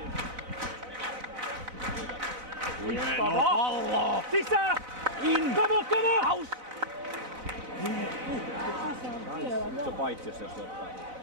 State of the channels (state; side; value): late; left; 4.0 ms